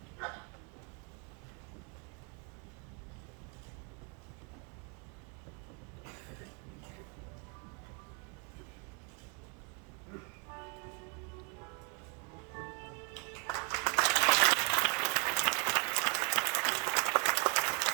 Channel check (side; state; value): left; quieter; 33.0 dB